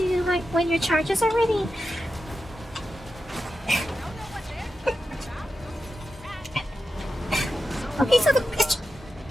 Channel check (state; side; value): normal; both; correlation 0.90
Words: like when your charges are ready. Okay, so